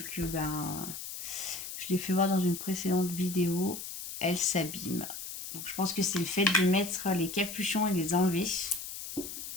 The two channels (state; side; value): noise; left; hiss, 8 dB below the sound